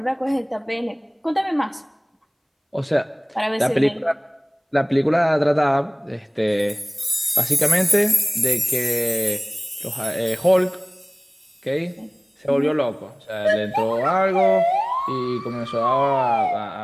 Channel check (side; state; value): both; identical; correlation 1.00